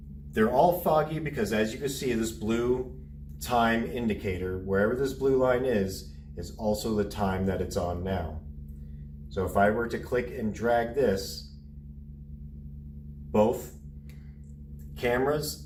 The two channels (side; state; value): both; identical; correlation 1.00